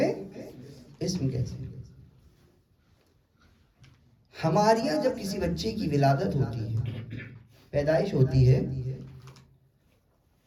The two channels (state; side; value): identical; both; correlation 1.00